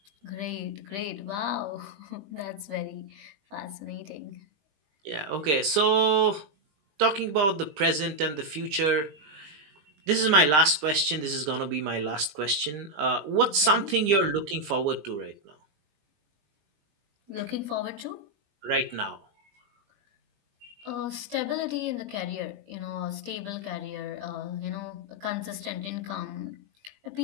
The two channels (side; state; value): left; late; 20 ms